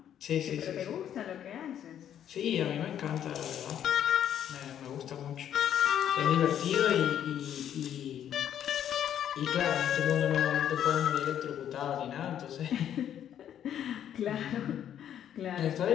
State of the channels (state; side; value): quieter; right; 10.0 dB